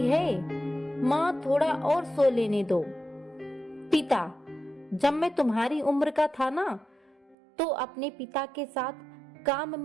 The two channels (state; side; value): drops out; left; at 7.4 s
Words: है, माँ थोड़ा और सो लेने दो। पिता, जब मैं तुम्हारी उम्र का था ना, तो अपने पिता के साथ काम